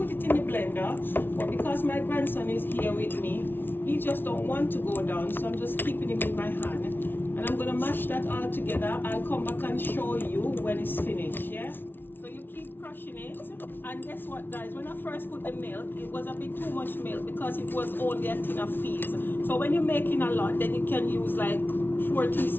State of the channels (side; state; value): right; late; 0.10 ms